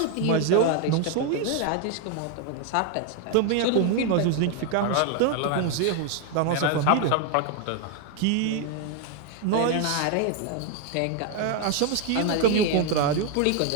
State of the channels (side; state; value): both; different; correlation 0.01